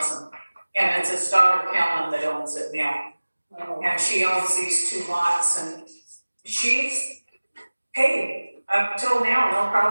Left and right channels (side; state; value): both; inverted; correlation -1.00